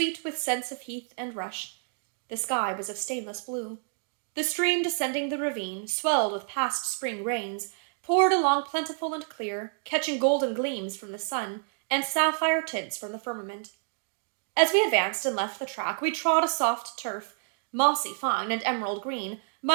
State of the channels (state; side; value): silent; left; 59 dB below the other